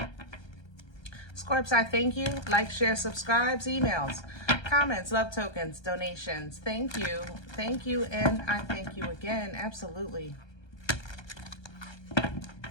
Scorps, I thank you. Like, share, subscribes, emails, comments, love tokens, donations. Thank you. Thank you, and I thank you again. Absolutely.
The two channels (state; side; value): late; right; 1.3 ms